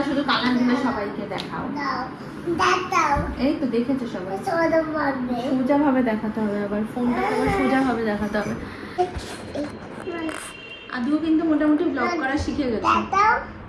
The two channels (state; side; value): identical; both; correlation 1.00